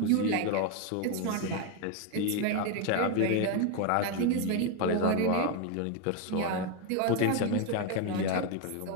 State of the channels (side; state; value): both; different; correlation 0.01